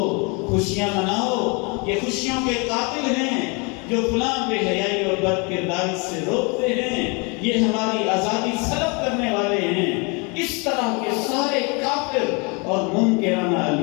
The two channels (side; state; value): right; quieter; 31.4 dB